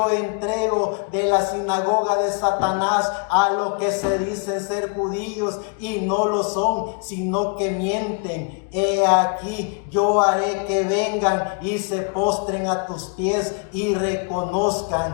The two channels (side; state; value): right; quieter; 36.8 dB